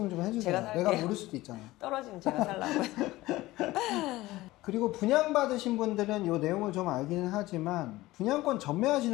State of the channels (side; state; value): right; quieter; 18.1 dB